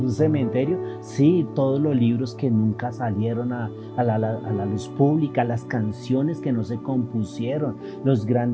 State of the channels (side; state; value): both; identical; correlation 1.00